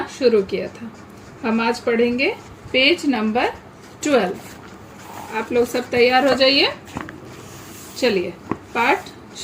शुरू किया था। हम आज पढ़ेंगे पेज नंबर 12। आप लोग सब तैयार हो जाइए। चलिए पाठ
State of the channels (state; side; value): identical; both; correlation 1.00